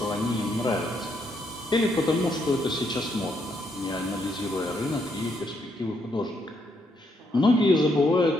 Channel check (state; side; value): normal; both; correlation 0.75